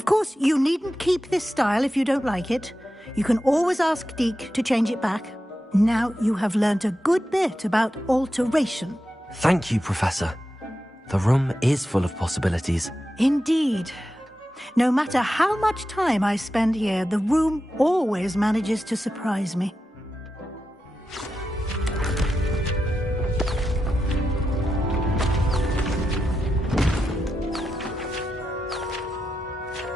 course, you needn't keep this style if you don't like it. You can always ask Deke to change it back. Now you have learnt a good bit about alteration. Thank you, Professor. The room is full of possibilities. Indeed. No matter how much time I spend here, the room always manages to surprise me.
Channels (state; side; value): normal; both; correlation 0.89